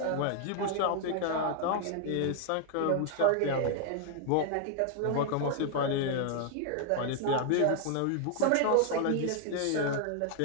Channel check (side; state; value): both; different; correlation 0.00